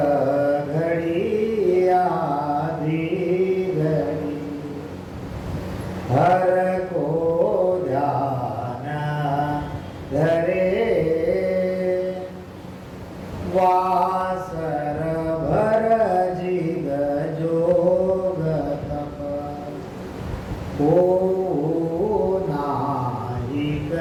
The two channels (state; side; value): identical; both; correlation 1.00